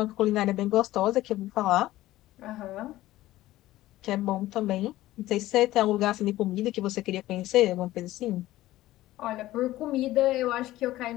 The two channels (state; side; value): quieter; right; 15.9 dB